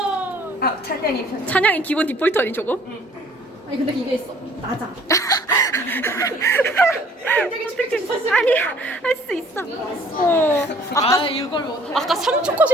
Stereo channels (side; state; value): both; normal; correlation 0.56